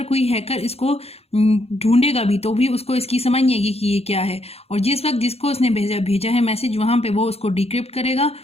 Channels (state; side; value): late; right; 0.29 ms